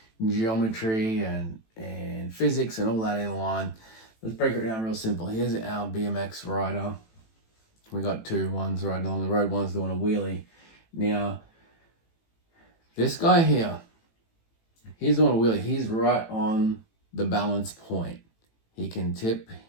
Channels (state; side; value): late; right; 18 ms